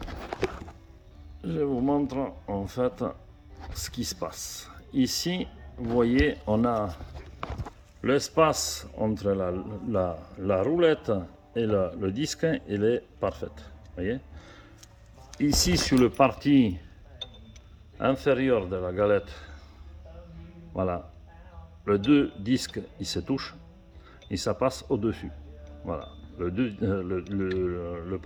je vous montre en fait ce qui se passe. Ici, vous voyez, on a l'espace entre la roulette et le disque, il est parfait. Voyez. Ici, sur le partie inférieure de la galette, voilà, les deux disques ils se touchent et ça passe au-dessus. Voilà, le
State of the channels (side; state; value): both; identical; correlation 1.00